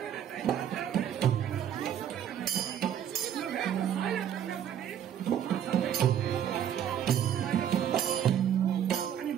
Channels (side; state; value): left; quieter; 9.6 dB